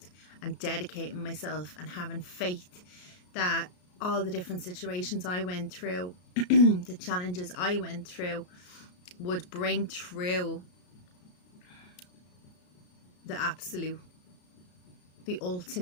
and dedicating myself and having faith that all the different situations I went through, the challenges I went through, would bring through the absolute, the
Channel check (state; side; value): late; right; 33 ms